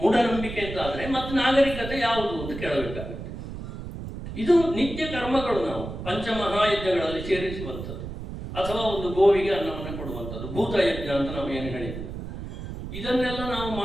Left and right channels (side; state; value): right; noise; rumble, 8 dB below the sound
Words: ಅಂತಾದರೆ ಮತ್ತೆ ನಾಗರಿಕತೆ ಯಾವುದು ಅಂತ ಕೇಳಬೇಕಾಗುತ್ತೆ. ಇದು ನಿತ್ಯ ಕರ್ಮಗಳು ನಾವು ಪಂಚಮಹಾಯಜ್ಞಗಳಲ್ಲಿ ಸೇರಿಸುವಂಥದ್ದು, ಅಥವಾ ಒಂದು ಗೋವಿಗೆ ಅನ್ನವನ್ನು ಕೊಡುವಂಥದ್ದು, ಭೂತಯಜ್ಞ ಅಂತ ನಾವು ಏನು ಹೇಳಿದ್ವಿ. ಇದನ್ನೆಲ್ಲ ನಾವು